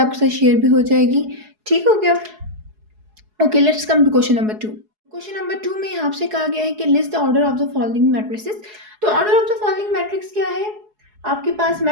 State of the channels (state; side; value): late; left; 4.7 ms